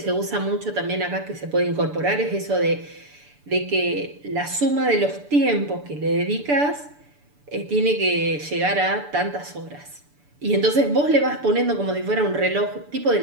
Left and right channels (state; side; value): late; left; 6.9 ms